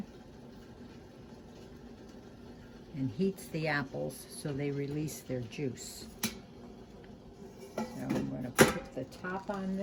and heats the apples so they release their juice. So I'm going to put the top on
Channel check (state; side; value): identical; both; correlation 1.00